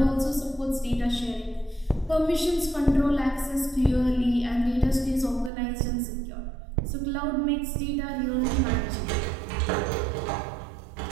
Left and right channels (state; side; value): drops out; left; at 5.5 s